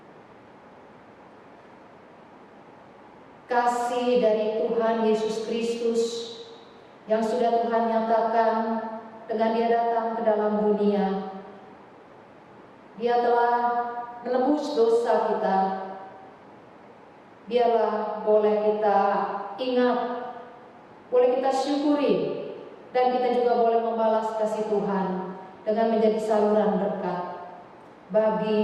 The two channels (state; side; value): identical; both; correlation 1.00